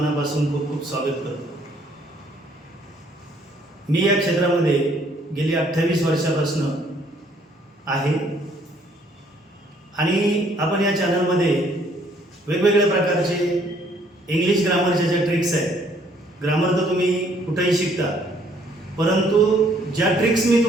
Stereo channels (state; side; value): normal; both; correlation 0.64